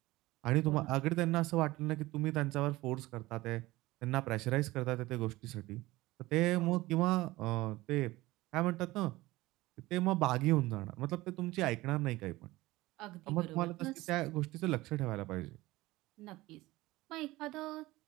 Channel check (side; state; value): left; quieter; 18.9 dB